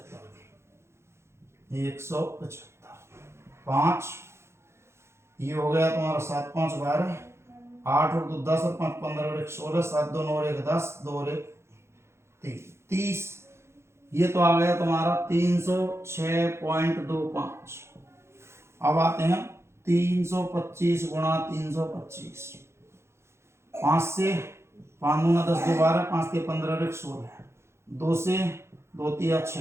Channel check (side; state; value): left; late; 0.13 ms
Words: 175, 5 ये हो गया तुम्हारा 7 5 12, 8 और 2 10 और 5 15 और 1 16, 7 2 9 और 1 10, 2 और 1 3 30। ये तो आ गया तुम्हारा 306.25। अब आते हैं 325 गुणा 325, 5 से 5 दूना 10 2 12, 5 के 15 और 1 16, 2 से 2 3 6।